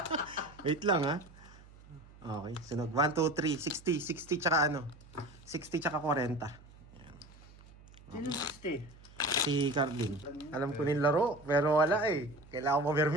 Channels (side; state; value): right; noise; hum, 22 dB below the sound